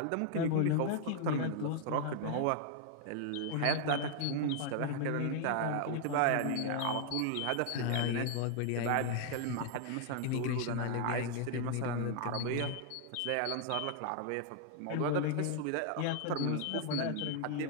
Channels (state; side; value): different; both; correlation 0.00